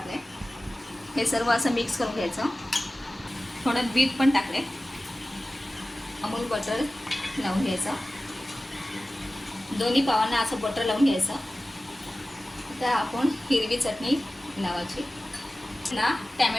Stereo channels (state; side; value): normal; both; correlation 0.96